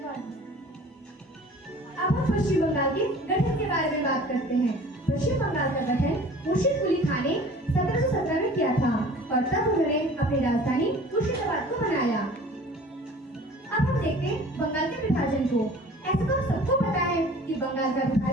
अब हम पश्चिम बंगाल के गठन के बारे में बात करते हैं। पश्चिम बंगाल का गठन मुर्शिद कुली खान ने 1717 में किया था और तब उन्होंने अपनी राजधानी मुर्शिदाबाद को बनाया। अब हम देखते हैं बंगाल के विभाजन को। ऐसा तो सबको पता है कि बंगाल का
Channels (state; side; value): normal; both; correlation 0.46